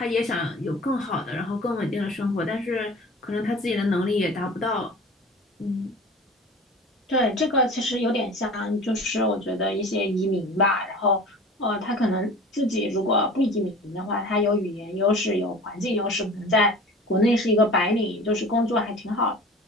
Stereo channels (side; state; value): both; normal; correlation 0.40